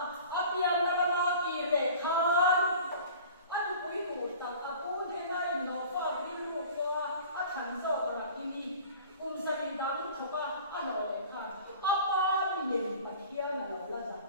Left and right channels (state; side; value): inverted; both; correlation -0.43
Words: api yang lama kiri kan, aku itu tak aku dengar nova biru gua, akan seorang ini, sering dalam coba anak kan, apa yang bagian dalam lazat